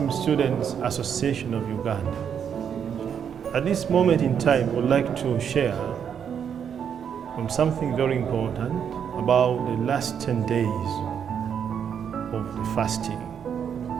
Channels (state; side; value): quieter; left; 7.9 dB